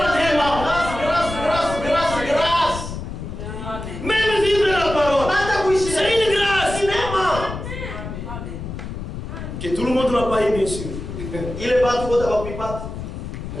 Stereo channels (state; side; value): noise; left; rumble, 8 dB below the sound